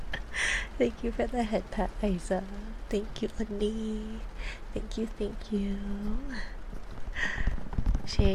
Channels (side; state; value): both; identical; correlation 1.00